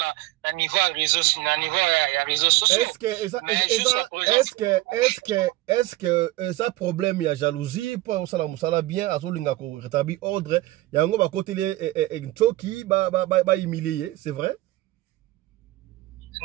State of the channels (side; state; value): left; quieter; 18.0 dB